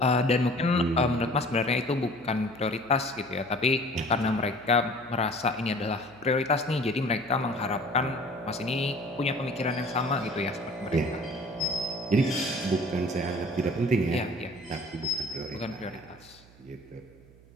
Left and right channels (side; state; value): right; noise; hum, 25 dB below the sound